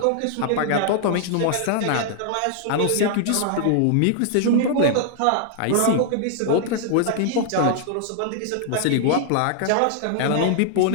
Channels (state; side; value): different; both; correlation -0.01